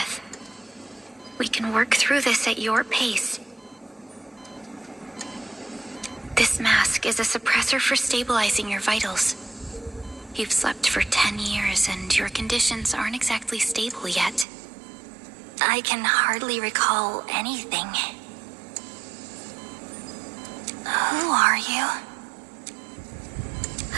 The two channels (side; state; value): left; drops out; at 14.5 s